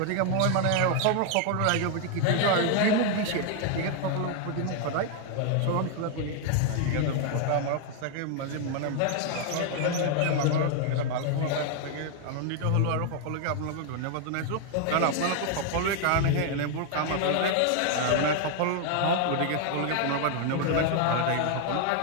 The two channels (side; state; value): both; different; correlation 0.00